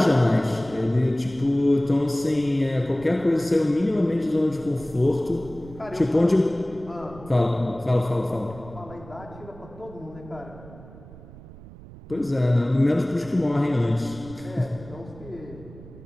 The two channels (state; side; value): noise; right; rumble, 18 dB below the sound